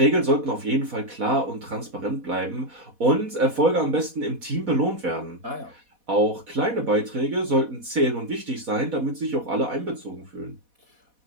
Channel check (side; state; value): left; late; 4.1 ms